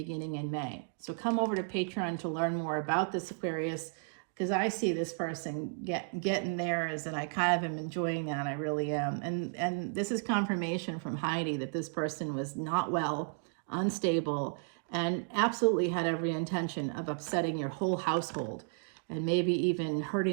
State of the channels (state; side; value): silent; left; 56 dB below the other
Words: in May. So come over to Patreon to learn more about this Aquarius, because I see this person getting theirs, and I kind of am enjoying that. I really am. And this is confirmation from Heidi that this person was not well, unstable, and absolutely had every intention of upsetting your whole household and maybe even